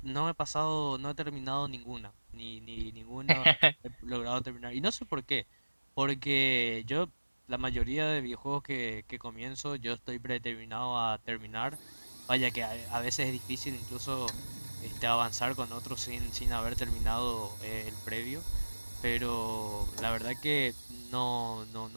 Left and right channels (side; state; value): both; inverted; correlation -1.00